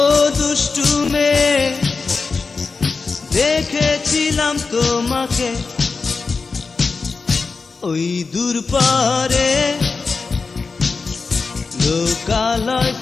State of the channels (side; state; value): right; quieter; 4.5 dB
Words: দুষ্টু মেয়ে দেখেছিলাম তোমাকে ওই দূর পারে লোকালয়